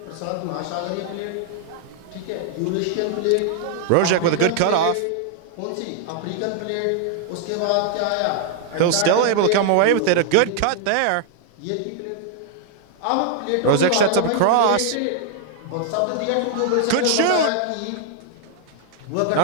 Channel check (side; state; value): both; different; correlation 0.00